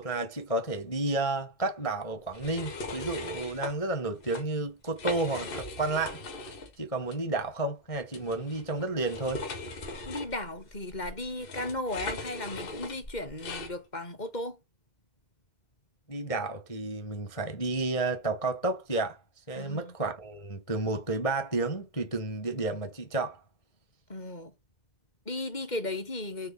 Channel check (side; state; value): right; late; 2.0 ms